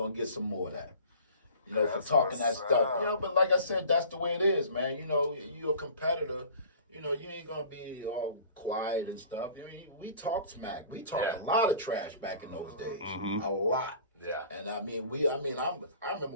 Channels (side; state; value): both; inverted; correlation -0.46